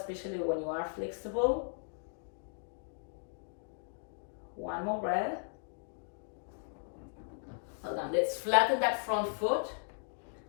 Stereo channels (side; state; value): right; silent; digital silence